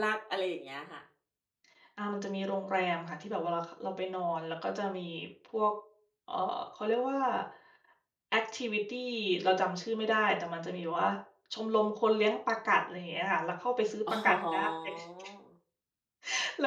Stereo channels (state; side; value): identical; both; correlation 1.00